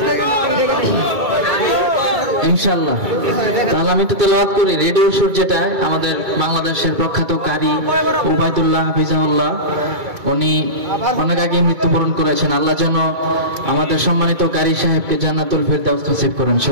ইনশাআল্লাহ। তাহলে আমি তো তেলাওয়াত করি। রেডিও সুর, যেটা আমাদের বাংলাদেশের প্রখ্যাত কারি উবাইদুল্লাহ হাফিজাহুল্লাহ, উনি অনেক আগে মৃত্যুবরণ করেছেন। আল্লাহ যেন আমাদের সম্মানিত কারি সাহেবকে জান্নাতুল ফিরদাউস নসিব করেন।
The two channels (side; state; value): left; late; 2.2 ms